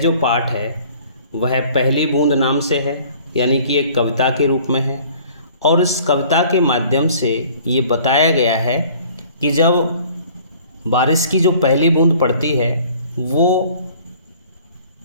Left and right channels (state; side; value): inverted; both; correlation -0.52